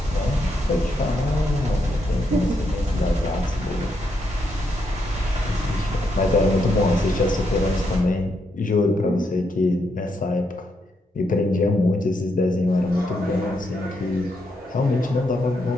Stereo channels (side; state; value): both; normal; correlation 0.79